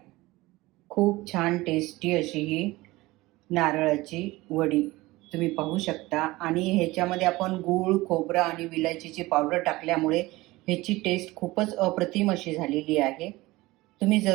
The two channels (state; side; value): quieter; left; 19.9 dB